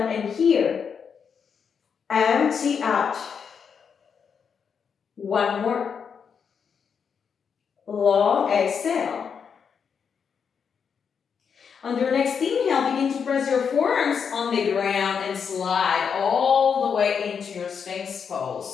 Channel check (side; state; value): right; quieter; 6.6 dB